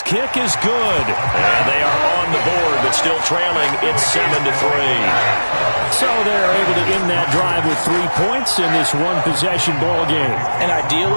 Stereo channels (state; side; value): inverted; both; correlation -1.00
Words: kick is good. And they are on the board, but still trailing. It's 7-3. So they're able to end that drive with 3 points in this one-possession ball game. And